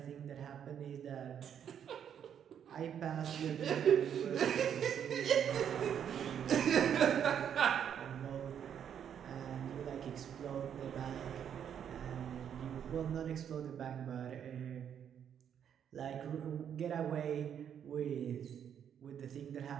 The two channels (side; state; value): left; quieter; 8.7 dB